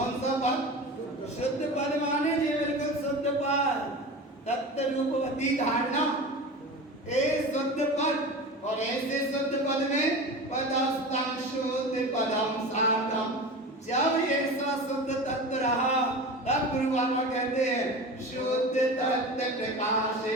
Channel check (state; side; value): normal; both; correlation 0.31